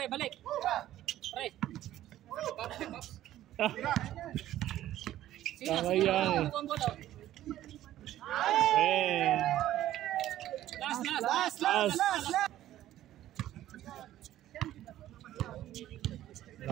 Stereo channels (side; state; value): left; quieter; 13.3 dB